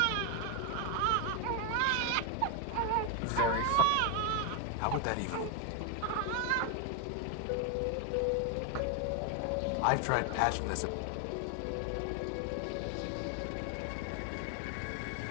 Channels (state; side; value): different; both; correlation 0.01